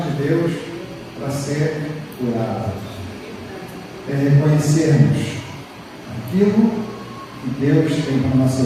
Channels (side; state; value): both; identical; correlation 1.00